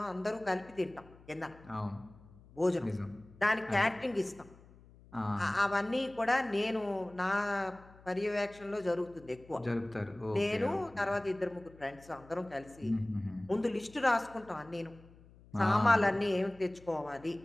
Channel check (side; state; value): left; noise; hum, 23 dB below the sound